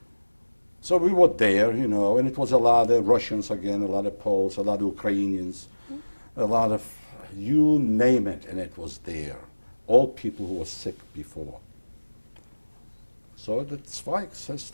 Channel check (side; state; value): both; inverted; correlation -1.00